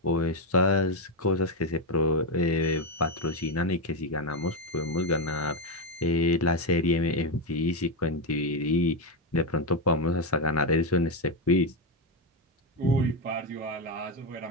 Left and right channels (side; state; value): both; normal; correlation 0.08